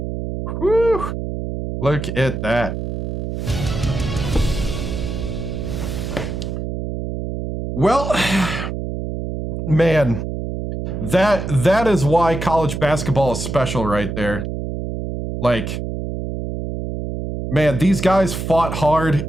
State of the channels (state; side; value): noise; right; hum, 5 dB below the sound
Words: Whew. Look at that. Well, man, that is why college basketball is special right there. Like, man, these guys fought hard.